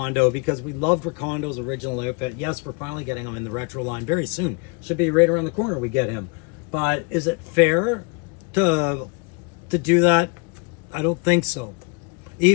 because we loved Recondo's original outfit. Yes, we're finally getting him in the retro line very soon. Should be right around the corner we get him. But is it fair to do that? I don't think so.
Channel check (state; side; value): quieter; right; 31.7 dB